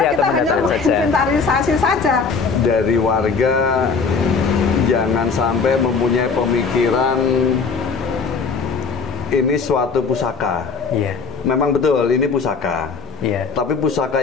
hanya menginventarisasi saja. Dari warga jangan sampai mempunyai pemikiran ini suatu pusaka. Memang betul ini pusaka. Tapi pusaka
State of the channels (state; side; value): quieter; right; 5.1 dB